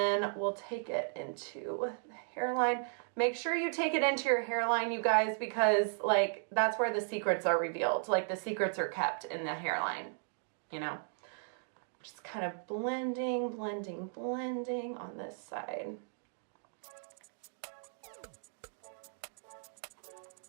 we'll take it into the hairline. Make sure you take it into your hairline, you guys, because like that's where the secrets are revealed. Like the secrets are kept in the hairline, you know. Just kind of blending, blending, blending on this side.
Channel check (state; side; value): silent; left; digital silence